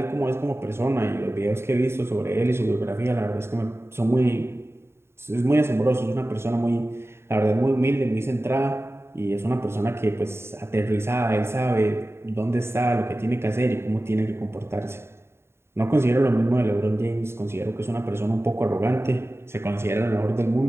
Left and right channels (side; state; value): left; late; 0.12 ms